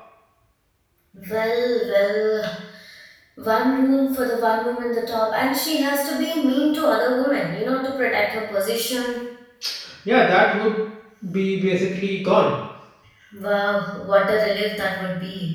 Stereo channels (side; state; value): both; identical; correlation 1.00